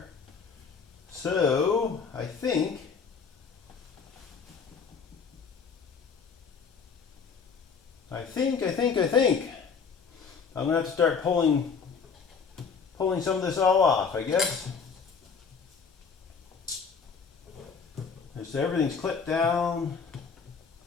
So, I think I'm gonna have to start pulling some of this all off, I guess. So everything's clipped down.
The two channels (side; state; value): right; quieter; 5.7 dB